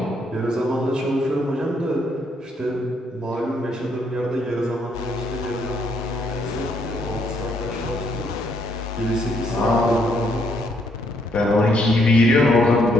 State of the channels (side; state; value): both; normal; correlation 0.72